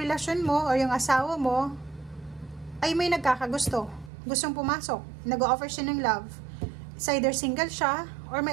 mo o yung asawa mo ay may nagkakagusto. Gustong pumasok. Nag-offer siya ng love. It's either single siya or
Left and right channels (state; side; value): drops out; left; at 4.1 s